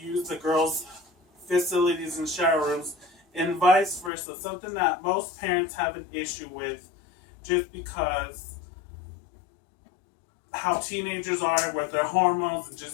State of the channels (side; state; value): right; drops out; at 4.1 s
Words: the girls' facilities and shower rooms and vice versa, something that most parents have an issue with just because how teenagers are with their hormones and